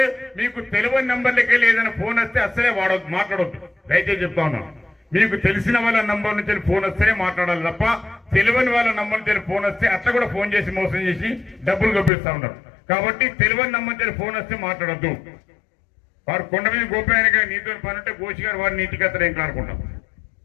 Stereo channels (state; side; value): drops out; right; at 12.1 s